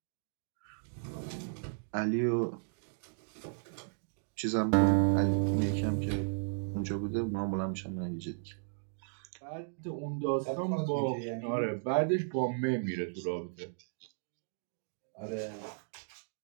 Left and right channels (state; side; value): silent; left; digital silence